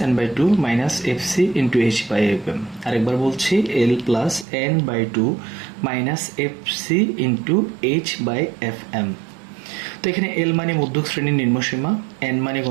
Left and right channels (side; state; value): left; drops out; at 4.5 s